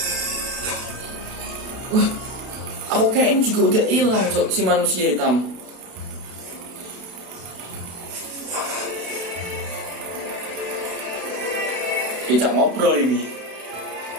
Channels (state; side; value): late; left; 32 ms